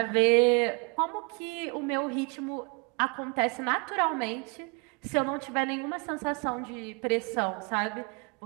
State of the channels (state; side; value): quieter; left; 31.0 dB